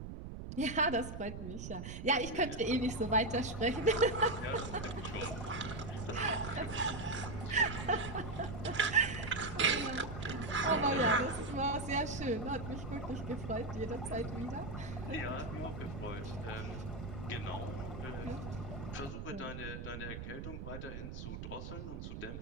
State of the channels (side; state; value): right; noise; rumble, 8 dB below the sound